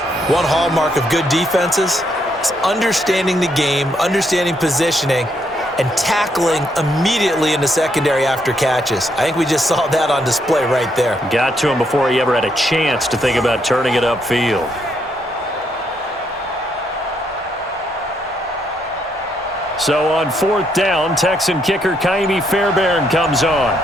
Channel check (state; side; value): normal; both; correlation 0.75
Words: One hallmark of good defenses is understanding the game, understanding positioning, and tackling immediately in the secondary after catches. I think we just saw that on display right there. Got to him before he ever had a chance to think about turning it upfield. So on 4th down, Texan kicker Kaimi Fairbairn comes on.